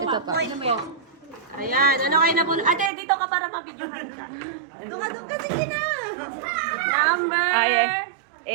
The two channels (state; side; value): drops out; left; at 2.9 s